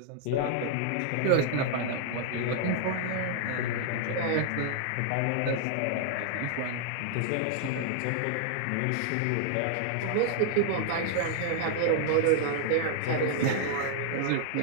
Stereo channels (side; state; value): both; different; correlation -0.01